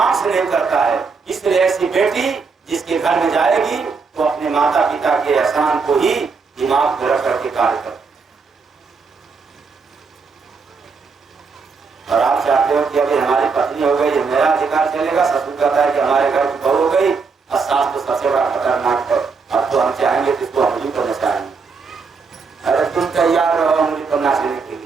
से नहीं करता है, इसलिए ऐसी बेटी जिसके घर में जाएगी तो अपने माता पिता के एहसान को ही दिमाग में रख करके कार्य करती। और आप चाहते हो कि अभी हमारी पत्नी हो गई, मेरा अधिकार चलेगा। ससुर कहता है कि हमारे घर की बहू हो गई, और सास तो सबसे बड़ा खतरनाक है, अब तो हम चाहेंगे तो इसको उंगली पर नचाएंगे। अरे तुम तैयार रहो उंगली पर नाचने के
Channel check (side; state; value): left; quieter; 4.9 dB